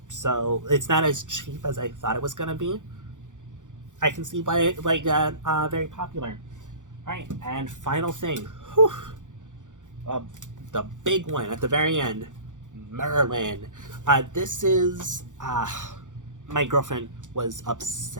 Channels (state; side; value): late; left; 0.86 ms